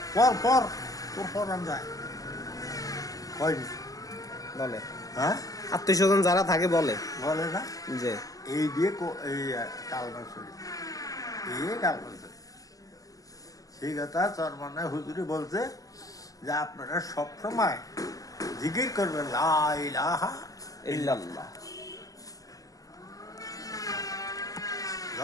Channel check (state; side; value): late; right; 0.17 ms